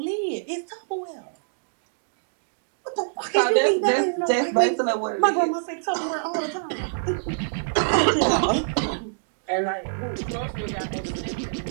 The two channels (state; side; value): silent; left; digital silence